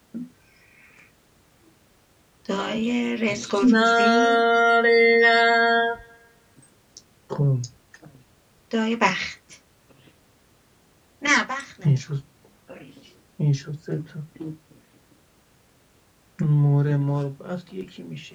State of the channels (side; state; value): both; identical; correlation 1.00